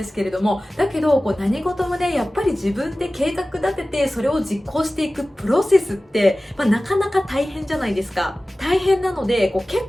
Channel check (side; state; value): both; normal; correlation 0.97